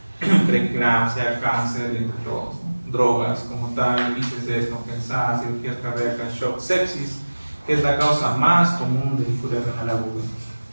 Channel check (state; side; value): inverted; both; correlation -1.00